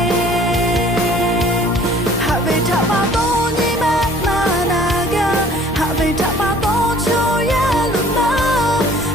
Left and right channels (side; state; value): both; normal; correlation 0.53